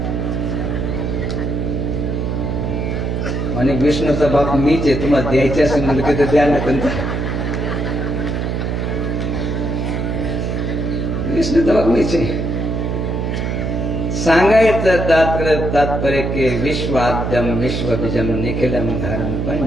म्हणे विष्णूचा बाप मीच आहे, तुम्हाला द्यायचे असेल म्हणलं की द्या ना. विष्णूचा बाप मीच आहे. सांगायचं तात्पर्य के विश्वाद्यम विश्वबीजम निखिलम धारम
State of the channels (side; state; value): right; noise; hum, 1 dB below the sound